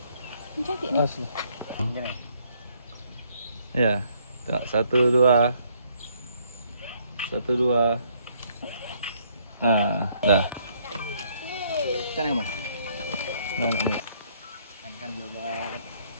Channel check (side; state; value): both; inverted; correlation -0.67